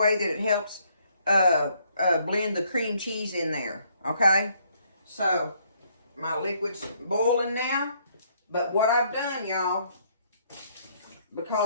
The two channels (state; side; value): inverted; both; correlation -0.68